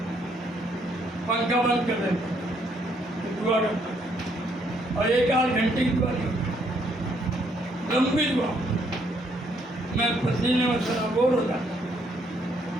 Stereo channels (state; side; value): normal; both; correlation 0.70